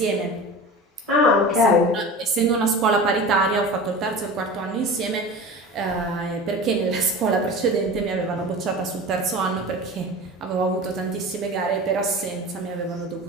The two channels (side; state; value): both; normal; correlation 0.34